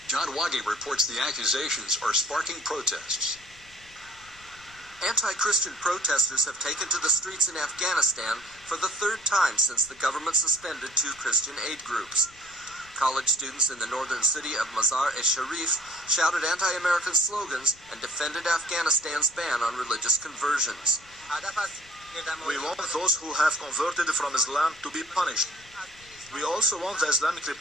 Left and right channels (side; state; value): left; noise; rumble, 25 dB below the sound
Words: John Waggy reports the accusations are sparking protests. Anti-Christian protesters have taken to the streets in Afghanistan for the third time since the government suspended two Christian aid groups. College students in the northern city of Mazar-e-Sharif shouted anti-American slogans and defended Afghanistan's ban on religious conversions. We want those who have converted from Islam to be punished. We also want the Islamic